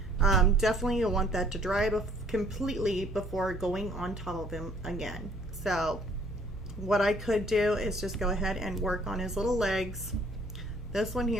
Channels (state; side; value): normal; both; correlation 0.59